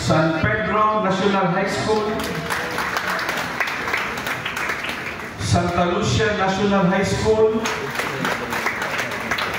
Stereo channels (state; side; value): identical; both; correlation 1.00